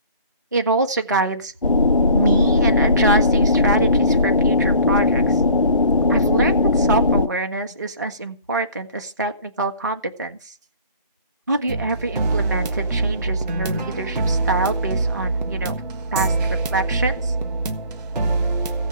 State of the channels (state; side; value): inverted; both; correlation -0.50